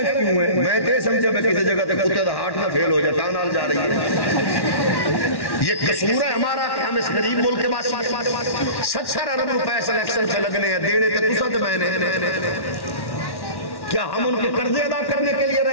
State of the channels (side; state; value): right; late; 1.1 ms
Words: کیوں ہے؟ میں تے سمجھا میں کسی جگہ تے کتے دا ہارٹ نہ فیل ہو جائے تا نال جا رہی ہے. یہ قصور ہے ہمارا کہ ہم اس غریب ملک کے باسی 70 ارب روپے سلیکشن سے لگنے ہیں, دینے تے تسا تے میں نے. کیا ہم ان کے قرضے ادا کرنے کے لیے